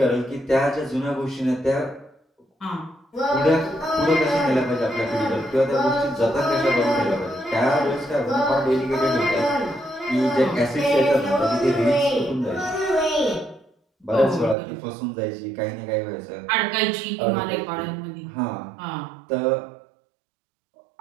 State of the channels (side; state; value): left; drops out; at 14.6 s